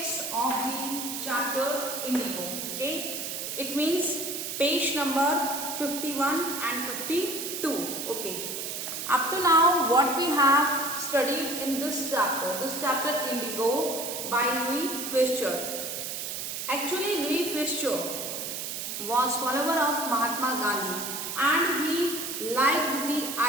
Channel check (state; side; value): noise; right; hiss, 5 dB below the sound